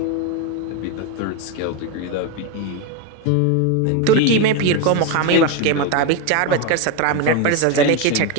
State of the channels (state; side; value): different; both; correlation 0.02